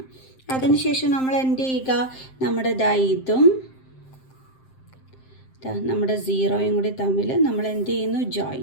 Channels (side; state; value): right; late; 7.6 ms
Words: അതിനുശേഷം നമ്മൾ എന്ത് ചെയ്യുക? നമ്മുടെ ഇതും നമ്മുടെ 0യും കൂടി തമ്മിൽ നമ്മൾ എന്ത് ചെയ്യുന്നു?